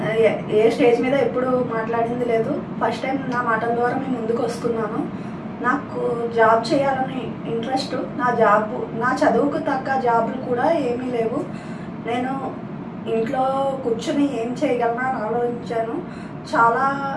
ఏ స్టేజ్ మీద ఎప్పుడు మాట్లాడింది లేదు. ఫస్ట్ టైం నా మాటల ద్వారా మేము ముందుకు వస్తున్నాను. నాకు జాబ్ చేయాలని ఇంట్రెస్ట్. నా చదువుకు తగ్గ జాబులు కూడా ఏమీ లేవు. నేను ఇంట్లో కూర్చొని ఏం చేయగలనా అని ఆలోచించాను.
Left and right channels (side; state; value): both; identical; correlation 1.00